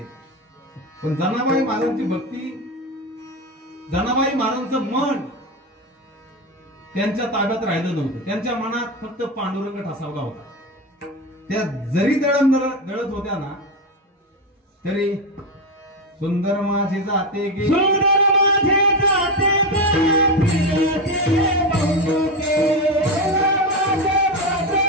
पण जनाबाई महाराजांची भक्ती, जनाबाई महाराजांचं मन त्यांच्या ताब्यात राहिलं नव्हतं. त्यांच्या मनात फक्त पांडुरंग ठसावला होता. त्या जरी दळत होत्या ना तरी सुंदर माझे जाते गे, सुंदर माझे जाते गे, फिरते बहुमुखे, सुंदर माझे जाते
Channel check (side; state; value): both; normal; correlation 0.15